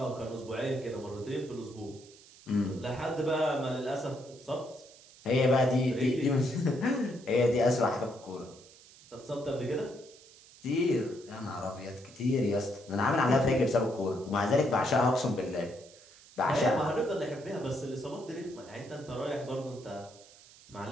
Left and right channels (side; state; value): right; noise; hiss, 23 dB below the sound